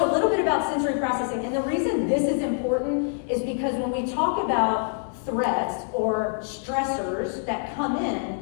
a little bit about sensory processing. And the reason this is important is because when we talk about threats or stressors that come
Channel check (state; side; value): silent; right; 59 dB below the other